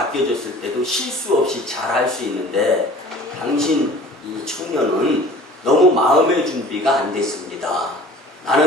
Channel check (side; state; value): both; normal; correlation 0.46